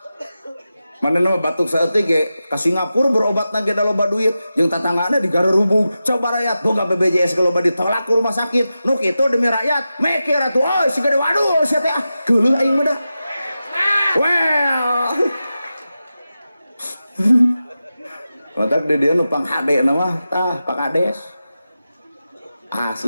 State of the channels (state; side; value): inverted; both; correlation -0.92